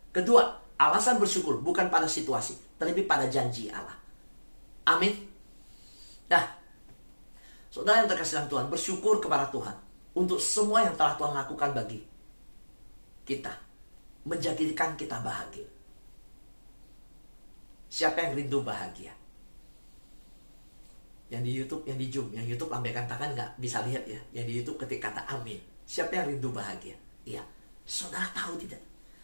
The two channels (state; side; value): inverted; both; correlation -1.00